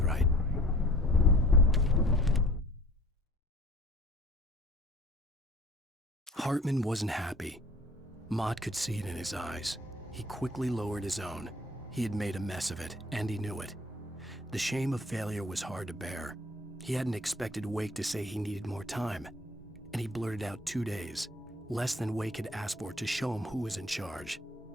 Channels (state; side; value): normal; both; correlation 0.50